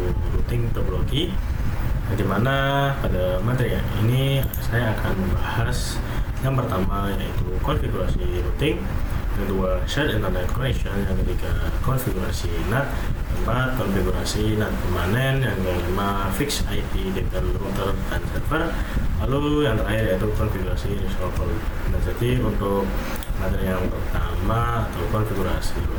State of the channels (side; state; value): both; identical; correlation 1.00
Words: routing topologi. Di mana pada materi ini saya akan membahas yang pertama yaitu konfigurasi routing, yang kedua shared internet connection, yang ketiga konfigurasi NAT, keempat konfigurasi NAT permanen, yang kelima fix IP dengan router dan server, lalu yang terakhir yaitu konfigurasi resolver. Nah, jadi untuk materi yang pertama atau konfigurasi